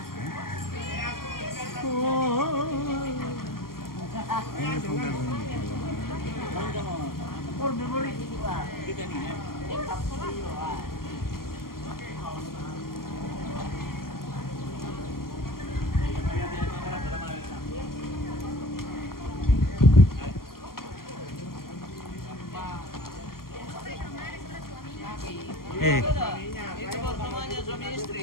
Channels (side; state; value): right; late; 0.92 ms